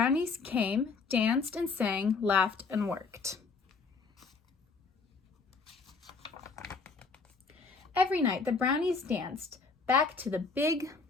came, danced and sang, laughed and worked. Every night the brownies danced back to the big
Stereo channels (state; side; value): quieter; right; 4.6 dB